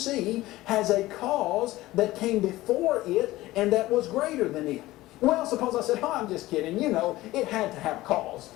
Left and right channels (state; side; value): quieter; right; 17.5 dB